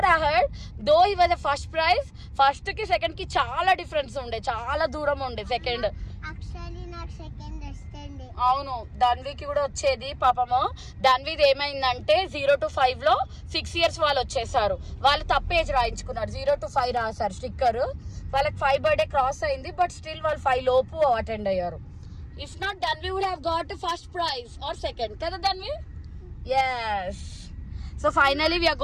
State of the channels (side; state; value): both; identical; correlation 1.00